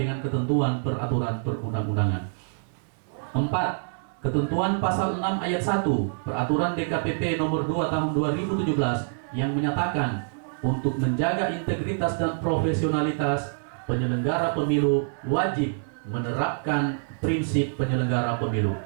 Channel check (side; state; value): left; silent; 61 dB below the other